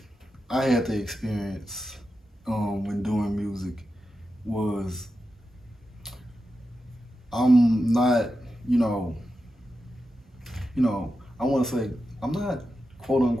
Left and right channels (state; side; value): normal; both; correlation 0.90